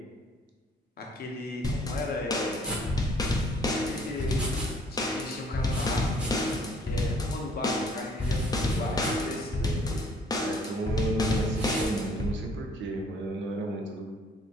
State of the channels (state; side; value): normal; both; correlation 0.60